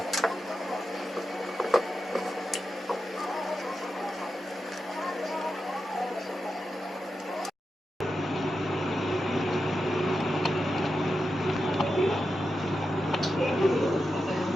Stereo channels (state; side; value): normal; both; correlation 0.89